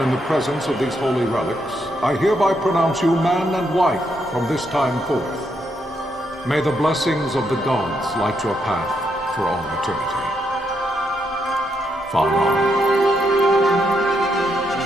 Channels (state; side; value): normal; both; correlation 0.78